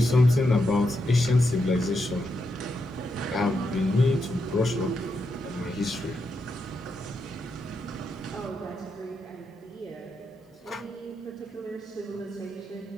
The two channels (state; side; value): normal; both; correlation 0.83